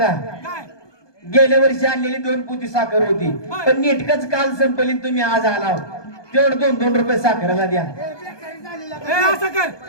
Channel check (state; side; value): late; right; 1.2 ms